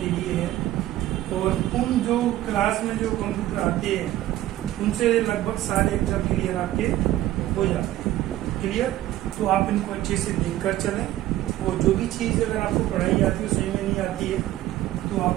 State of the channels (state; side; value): quieter; left; 14.5 dB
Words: के लिए है। और उन जो क्लास में जो कंप्यूटर आते हैं उनसे लगभग सारे एग्जाम क्लियर आपके हो जाते हैं। क्लियर? तो आप इनको अच्छे से देखकर चलें और जो भी चीज़ अगर आपको पढ़ाई आती है सही में नहीं आती है तो आप